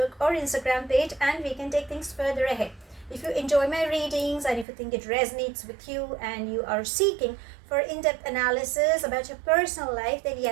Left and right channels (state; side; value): drops out; left; at 4.7 s